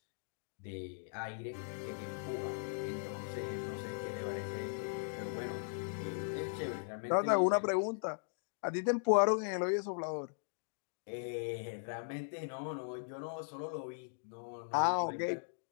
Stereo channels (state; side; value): silent; right; digital silence